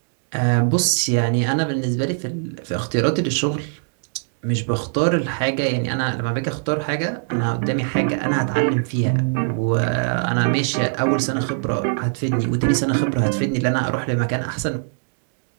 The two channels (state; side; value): silent; left; 64 dB below the other